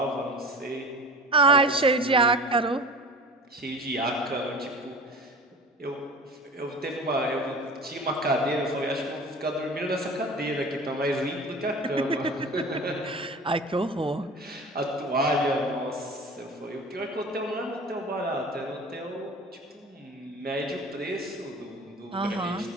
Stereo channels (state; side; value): normal; both; correlation 0.38